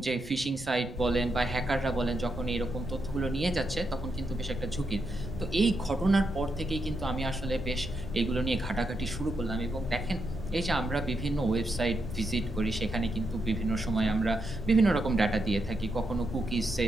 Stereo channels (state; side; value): noise; right; rumble, 15 dB below the sound